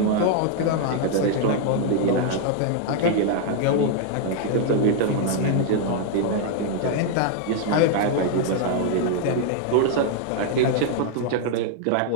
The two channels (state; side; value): different; both; correlation 0.00